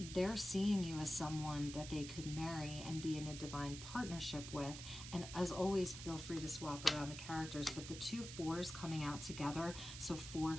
seeing you as someone that they could marry and be in a divine partnership with. And as always, feel free to swap around the characters, but the two fours coming out together, so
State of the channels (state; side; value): noise; right; hiss, 10 dB below the sound